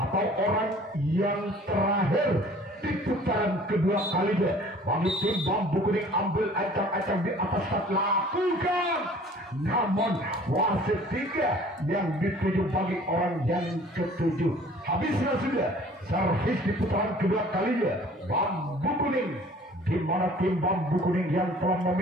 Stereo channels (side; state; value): both; normal; correlation 0.51